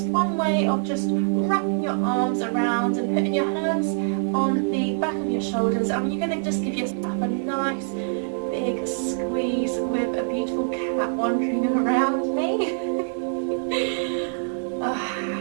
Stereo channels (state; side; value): silent; left; 62 dB below the other